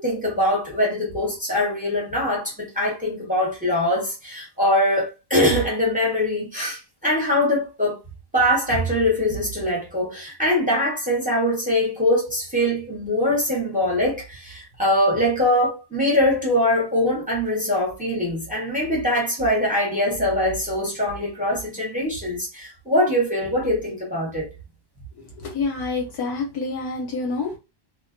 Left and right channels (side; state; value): right; late; 1.1 ms